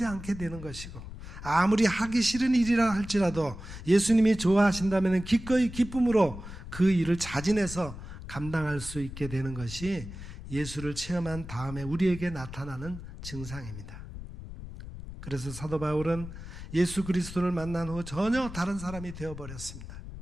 않게 되는 것이고, 아무리 하기 싫은 일이라 할지라도 예수님이 좋아하신다면 기꺼이 기쁨으로 그 일을 자진해서 감당할 수 있게 되는 것이 예수를 체험한 다음에 우리에게 나타나는 증상입니다. 그래서 사도 바울은 예수 그리스도를 만난 후 전혀 다른 사람이 되어버렸습니다.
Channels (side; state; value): left; noise; rumble, 12 dB below the sound